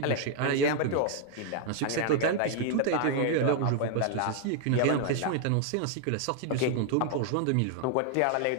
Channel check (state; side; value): different; both; correlation 0.00